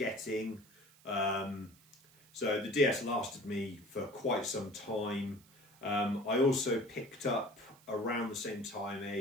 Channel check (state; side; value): noise; right; hiss, 27 dB below the sound